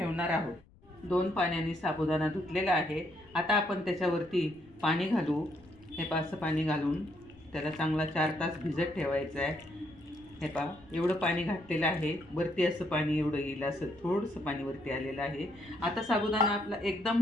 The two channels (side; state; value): left; noise; rumble, 27 dB below the sound